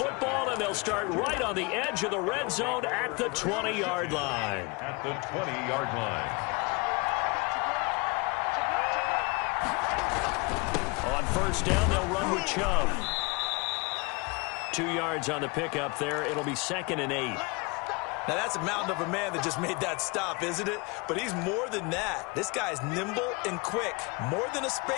and they'll start right on the edge of the red zone at the 20-yard line. At the 20-yard line. On 1st down, they'll run with Chubb. 2 yards on the pickup there. It'll be 2nd and 8. Now, that's a mountain of a man that just made that stop, isn't it? But he's more than that. This guy's nimble and quick. More than a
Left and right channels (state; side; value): quieter; right; 28.8 dB